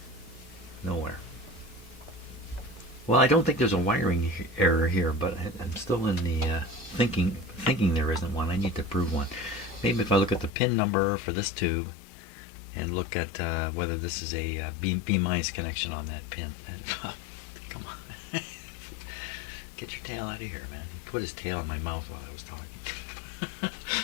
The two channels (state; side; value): drops out; right; at 10.5 s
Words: Nowhere. Well, I don't think there's a wiring error here, but I'm still in the thinking there isn't one. I need to prove one. Maybe if I look at the pin number for this tube and look at whether this is a B- connection on that pin. And, oh, come on. Get your tail out of here, man. He put his tail in my mouth while I was talking.